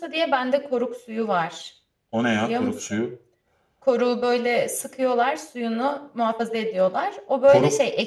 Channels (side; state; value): both; identical; correlation 1.00